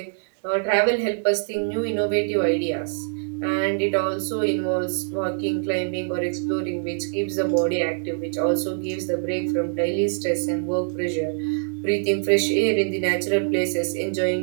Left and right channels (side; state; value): left; silent; digital silence